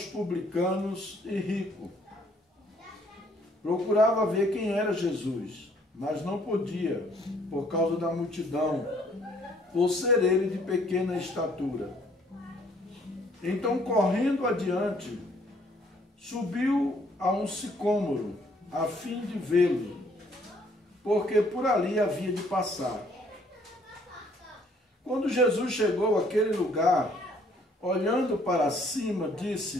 publicanos e rico, procurava ver quem era Jesus, mas não podia, por causa da multidão, por ser ele de pequena estatura. Então, correndo adiante, subiu a um sicômoro, a fim de vê-lo, porque por ali havia de passar. Quando Jesus chegou àquele lugar, olhando para cima,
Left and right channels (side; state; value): both; normal; correlation 0.63